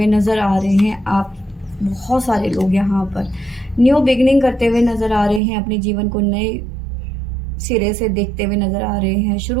नज़र आ रहे हैं आप। बहुत सारे लोग यहाँ पर न्यू बिगनिंग करते हुए नज़र आ रहे हैं, अपने जीवन को नए सिरे से देखते हुए नज़र आ रहे हैं,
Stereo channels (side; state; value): left; drops out; at 5.4 s